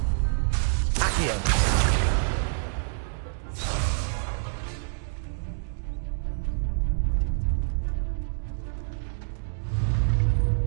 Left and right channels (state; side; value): silent; left; digital silence